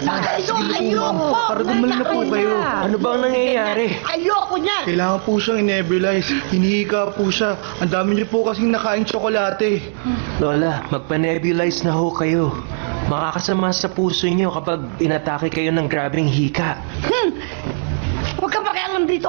ba kayo? Ayoko! Para gumaling na po kayo. Ano ba ang nangyayari? Ayoko niyan! Kailangan po siyang in-nebulize. Hinihika po siya. Ang dami niyo po kasing nakain tsokolate. Lola, magpa-nebulize na ho kayo. Makakasama sa puso niyo kapag inatake kayo ng grabing hika. Huwag ka pakialam dito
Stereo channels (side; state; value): left; silent; digital silence